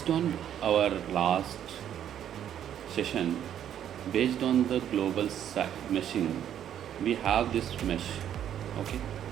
on our last session, based on the global meshing, we have this mesh. Okay,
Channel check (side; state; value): left; quieter; 10.1 dB